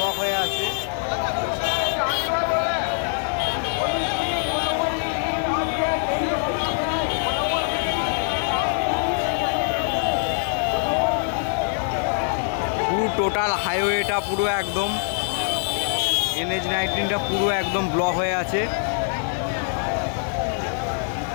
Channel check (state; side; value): silent; right; 63 dB below the other